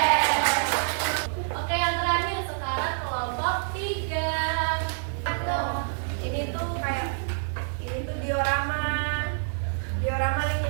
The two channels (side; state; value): left; silent; digital silence